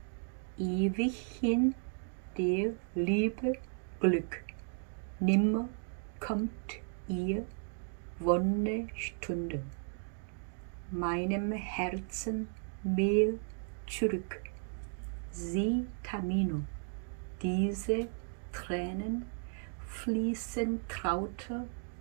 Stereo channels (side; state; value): left; silent; 54 dB below the other